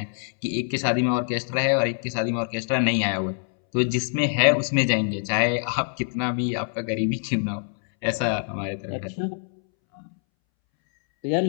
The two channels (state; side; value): silent; right; 62 dB below the other